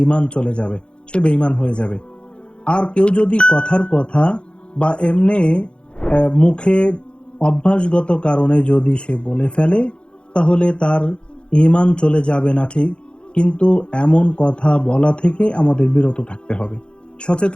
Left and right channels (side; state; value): right; late; 0.056 ms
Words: চলে যাবে, সে বেঈমান হয়ে যাবে। আর কেউ যদি কথার কথা বা এমনি মুখে অভ্যাসগত কারণে যদি সে বলে ফেলে, তাহলে তার ঈমান চলে যাবে না ঠিক, কিন্তু এমন কথা বলা থেকে আমাদের বিরত থাকতে হবে,